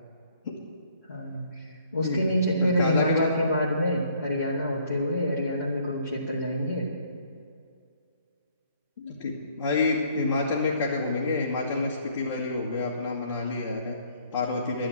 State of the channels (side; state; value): both; inverted; correlation -0.63